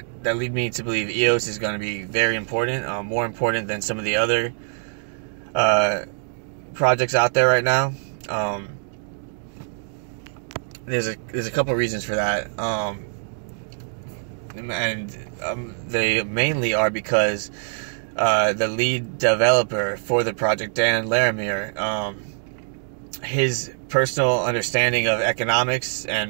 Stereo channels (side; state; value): left; silent; digital silence